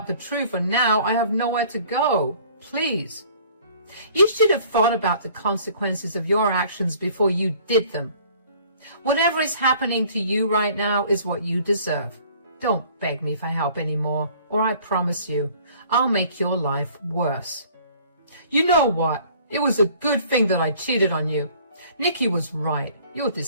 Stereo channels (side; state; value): both; inverted; correlation -0.54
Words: the truth, and now I have nowhere to go. Please. You should have thought about the consequences of your actions before you did them. Whatever is happening to you right now is what you deserve. Don't beg me for help anymore, or I promise you, I'll make your life worse. You know what? It was a good thing that I cheated on you. Nikki was right. You're